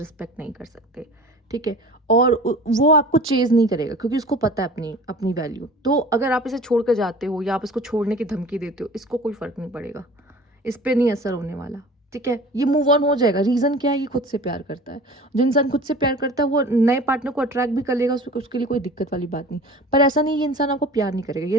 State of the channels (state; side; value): normal; both; correlation 0.41